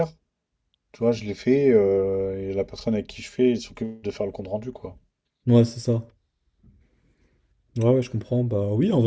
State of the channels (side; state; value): both; identical; correlation 1.00